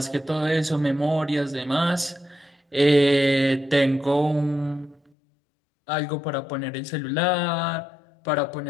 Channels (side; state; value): right; drops out; at 5.1 s